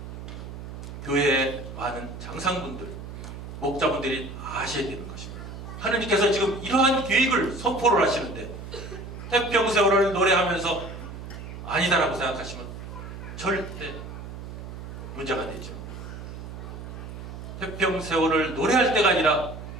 교회의 많은 장상분들, 목자분들이 아셔야 되는 것입니다. 하나님께서 지금 이러한 계획을 선포를 하시는데 태평세월을 노래하면서 아니다라고 생각하시면 절대 문제가 되죠. 태평세월을 노래할 때가 아니라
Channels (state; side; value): noise; right; hum, 10 dB below the sound